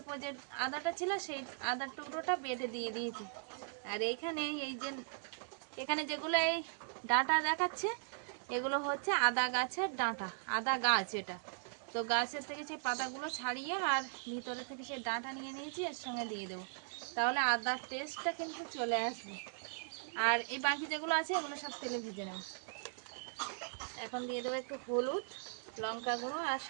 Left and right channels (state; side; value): silent; left; digital silence